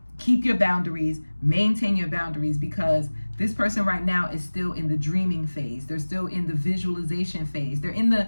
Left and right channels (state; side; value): inverted; both; correlation -1.00